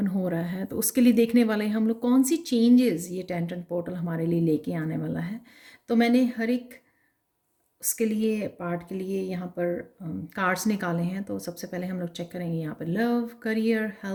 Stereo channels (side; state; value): both; identical; correlation 1.00